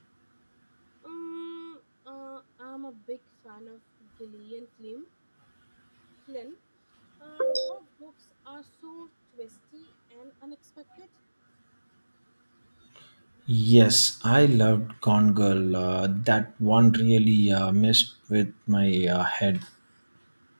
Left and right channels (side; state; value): both; inverted; correlation -1.00